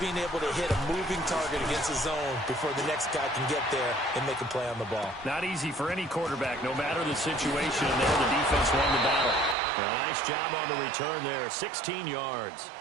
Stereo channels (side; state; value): left; drops out; at 9.6 s